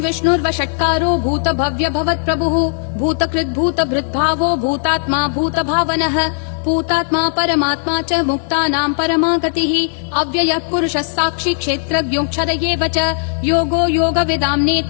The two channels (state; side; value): silent; right; digital silence